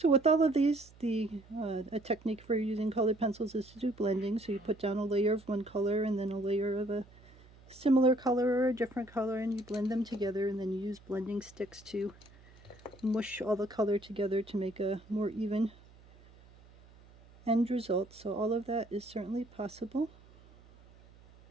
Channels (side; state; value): right; noise; hum, 24 dB below the sound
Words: with all of these, a technique for using colored pencils is to do blending. So you put down a layer of one color and then a layer of a similar color or a different color, and you blend them together, and then you use blending sticks to mush all the color together to make a more even end result. So all of that is certainly possible.